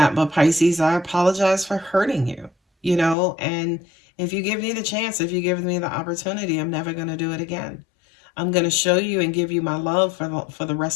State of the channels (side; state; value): right; drops out; at 3.2 s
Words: but Pisces, I apologize for hurting you, and if you give me the chance, if you give me the opportunity, I'm never going to do it again. I'm going to show you and give you my love for the